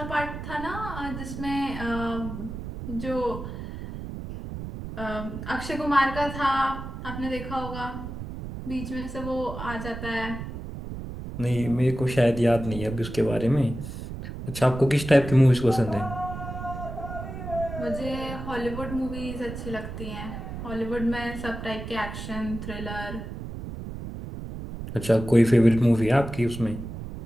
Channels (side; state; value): right; noise; rumble, 8 dB below the sound